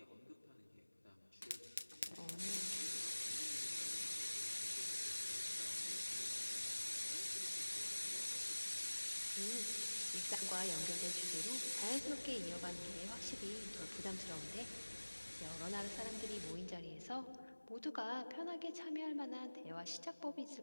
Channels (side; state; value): both; inverted; correlation -1.00